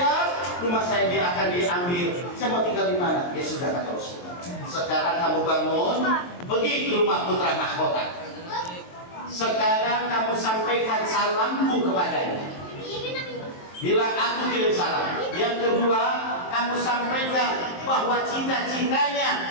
rumah saya dia akan diambil. Saya mau tinggal di mana? Ya sudah kata Rasulullah. Sekarang kamu bangun, pergi ke rumah putra mahkota. Sekarang kamu sampaikan salamku kepadanya. Bilang aku kirim salam. Yang kedua, kamu sampaikan bahwa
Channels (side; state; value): right; late; 23 ms